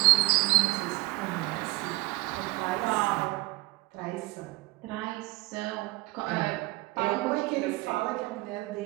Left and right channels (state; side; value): quieter; left; 21.4 dB